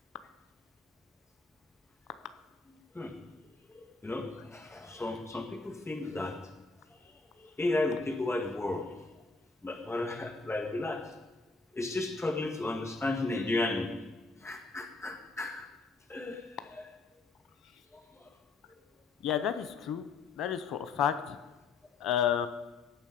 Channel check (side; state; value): right; quieter; 3.9 dB